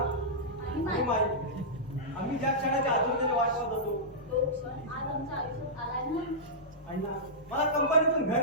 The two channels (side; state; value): both; normal; correlation -0.13